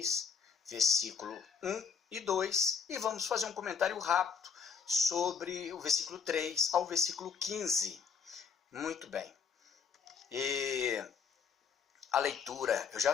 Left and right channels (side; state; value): right; quieter; 6.2 dB